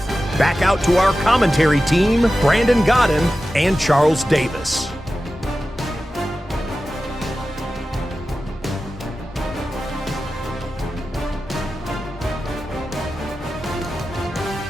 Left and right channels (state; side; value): normal; both; correlation 0.94